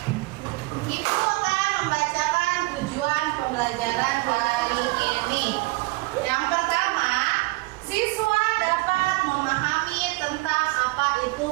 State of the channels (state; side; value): quieter; left; 23.5 dB